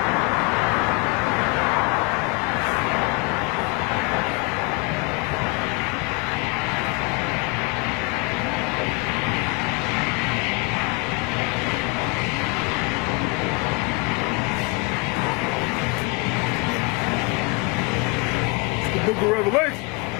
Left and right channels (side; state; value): right; quieter; 28.3 dB